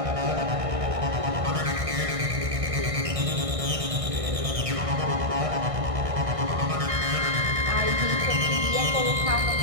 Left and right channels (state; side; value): late; left; 1.6 ms